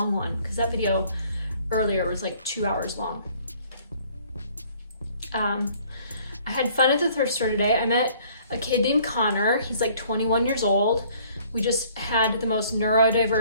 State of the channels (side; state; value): both; inverted; correlation -0.58